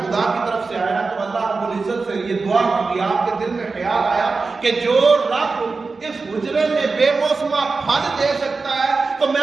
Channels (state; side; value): quieter; left; 4.2 dB